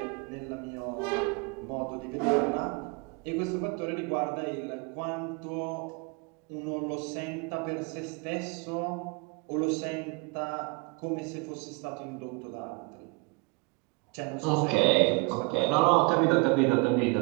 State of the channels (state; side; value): quieter; left; 29.9 dB